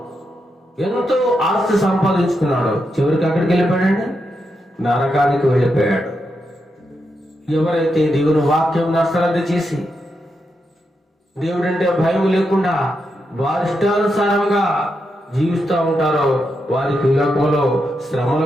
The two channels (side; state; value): both; normal; correlation 0.84